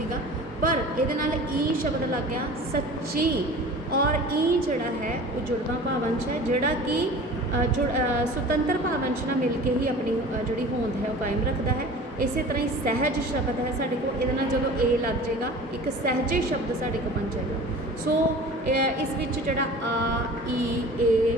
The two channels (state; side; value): normal; both; correlation 0.40